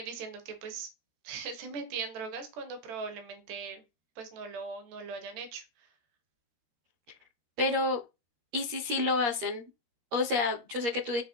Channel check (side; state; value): left; late; 13 ms